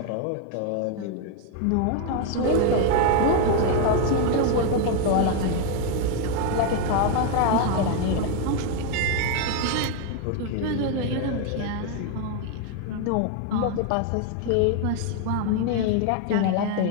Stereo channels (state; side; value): different; both; correlation 0.01